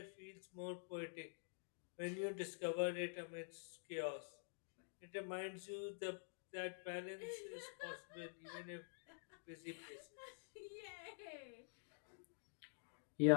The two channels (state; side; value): silent; right; digital silence